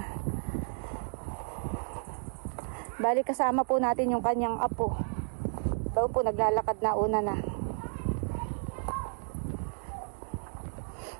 Bali kasama po natin yung kanyang apo. Ito po naglalakad na una na.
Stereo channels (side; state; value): left; silent; 56 dB below the other